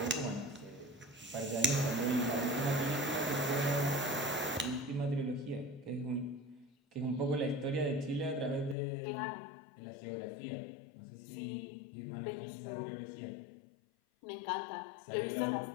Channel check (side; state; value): right; drops out; at 8.8 s